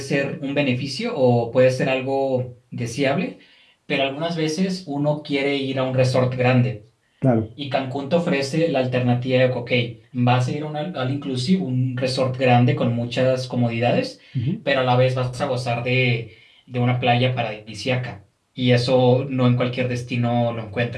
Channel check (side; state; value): both; identical; correlation 1.00